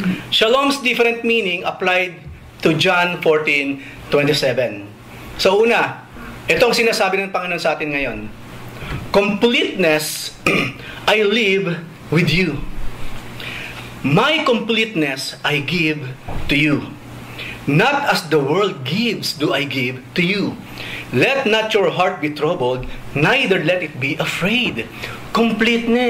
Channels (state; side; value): identical; both; correlation 1.00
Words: Shalom's different meaning applied to John 14:27. So, una, itong sinasabi ng Panginoon sa atin ngayon. Completeness, I live with you. My completeness I give to you. Not as the world gives do I give to you. Let not your heart be troubled, neither let it be afraid.